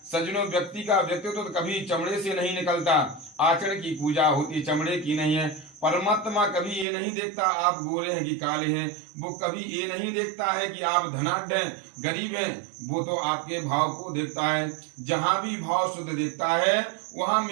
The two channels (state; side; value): drops out; left; at 6.9 s